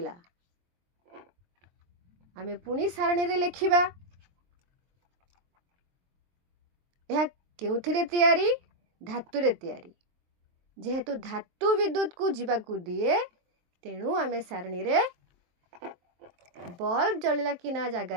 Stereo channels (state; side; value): late; left; 23 ms